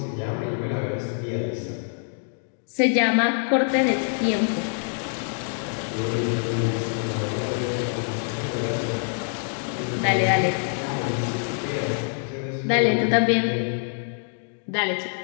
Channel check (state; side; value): silent; right; digital silence